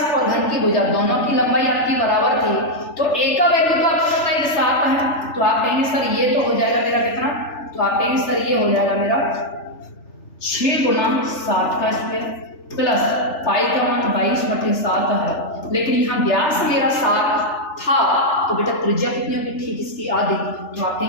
और घन की भुजा दोनों की लंबाई आपकी बराबर थी, तो a का वैल्यू तो आपको पता है 7 है। तो आप कहेंगे सर ये तो हो जाएगा मेरा कितना? तो आप कहेंगे सर ये हो जाएगा मेरा 6 गुना 7 का स्क्वायर प्लस पाई का मान 22/7 है। लेकिन यहाँ व्यास मेरा 7 था, तो बेटा त्रिज्या कितनी होगी? ठीक इसकी आधी। तो आप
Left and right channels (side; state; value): right; late; 3.4 ms